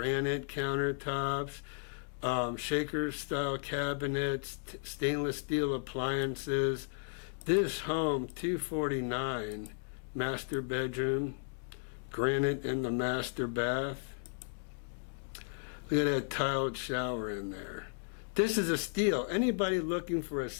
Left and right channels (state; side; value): silent; right; digital silence